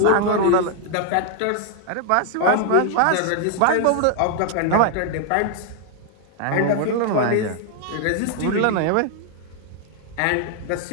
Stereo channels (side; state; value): both; different; correlation 0.00